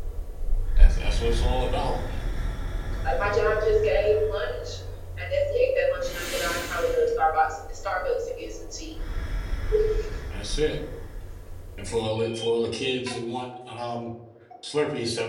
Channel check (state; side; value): identical; both; correlation 1.00